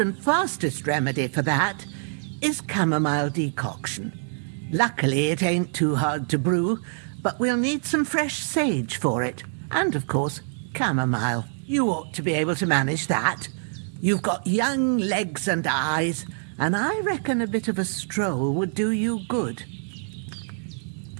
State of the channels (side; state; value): left; silent; 61 dB below the other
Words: fastest remedy for that is chamomile decoction. Luckily, it ain't too hard to brew, but we'll need some fresh sage for it. And, of course, chamomile. You ought to be able to manage that. You've got young legs and eyes, and I reckon a bit of a stroll would do you good.